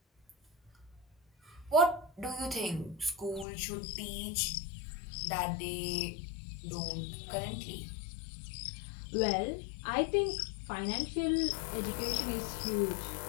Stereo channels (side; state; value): right; drops out; at 3.5 s